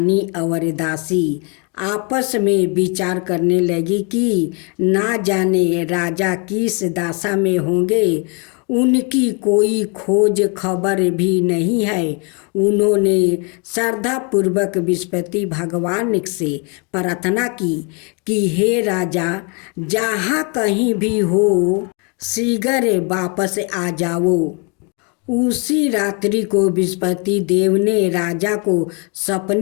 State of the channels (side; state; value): right; quieter; 34.3 dB